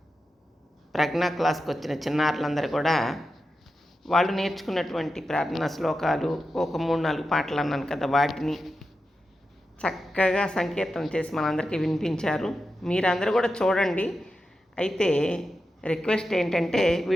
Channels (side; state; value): both; normal; correlation 0.90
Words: ప్రజ్ఞా క్లాస్కి వచ్చిన చిన్నారులందరూ కూడా వాళ్ళు నేర్చుకున్నటువంటి ప్రార్థనా శ్లోకాలు ఒక 3-4 పాటలు అన్నాను కదా, వాటిని చక్కగా సంకీర్తన చేసి మనందరికీ వినిపించారు. మీరందరూ కూడా చూడండి. అయితే రిక్వెస్ట్ ఏంటంటే